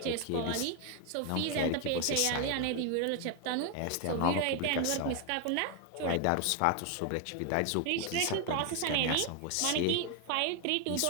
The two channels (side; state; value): both; different; correlation 0.01